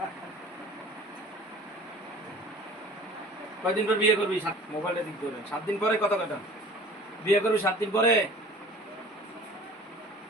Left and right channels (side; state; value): both; normal; correlation 0.45